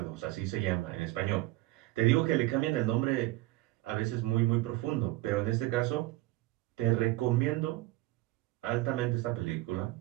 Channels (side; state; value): left; quieter; 18.2 dB